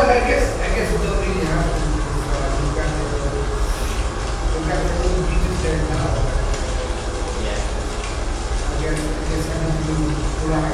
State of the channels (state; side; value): identical; both; correlation 1.00